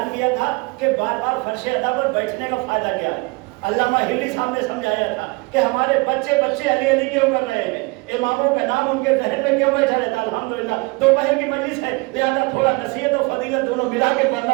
کیا تھا کہ بار بار فرش ادا پر بیٹھنے کا فائدہ کیا ہے. علامہ ہلی صاحب نے سمجھایا تھا کہ ہمارے بچے علی علی کیوں کر رہے ہیں، اماموں کا نام ان کے ذہن میں کیوں بیٹھا رہتا ہے. الحمدللہ دوپہر کی مجلس ہے، لہذا تھوڑا نصیحت و فضیلت دونوں ملا کے پڑھنا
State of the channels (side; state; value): left; quieter; 27.0 dB